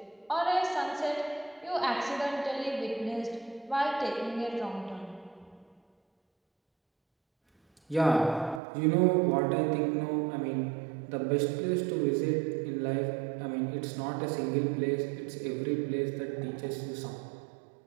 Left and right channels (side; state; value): left; drops out; at 8.6 s